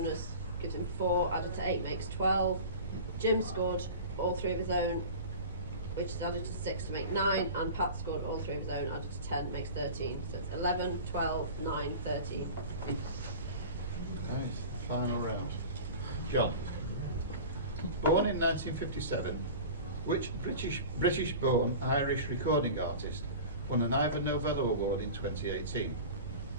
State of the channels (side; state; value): both; inverted; correlation -0.35